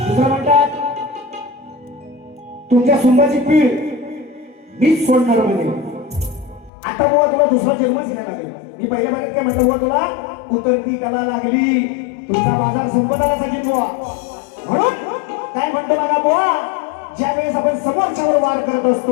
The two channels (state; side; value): drops out; right; at 6.7 s